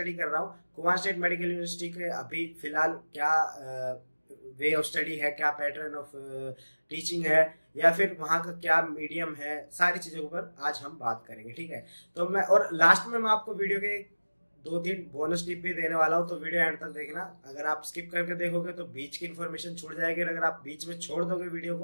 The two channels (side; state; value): both; inverted; correlation -1.00